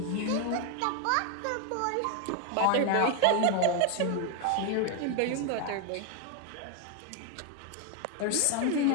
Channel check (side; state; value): both; different; correlation 0.00